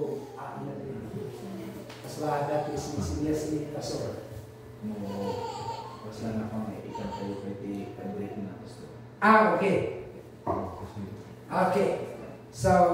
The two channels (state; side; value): identical; both; correlation 1.00